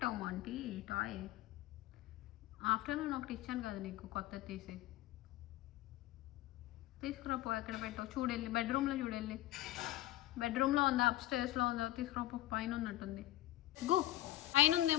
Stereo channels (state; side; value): quieter; right; 15.3 dB